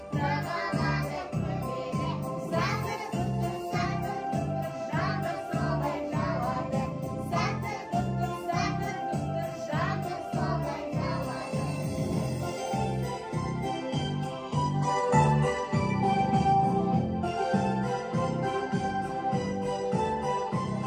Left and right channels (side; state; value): both; identical; correlation 1.00